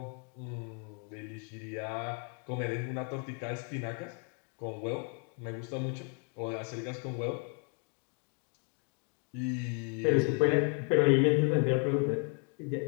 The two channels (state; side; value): quieter; right; 36.6 dB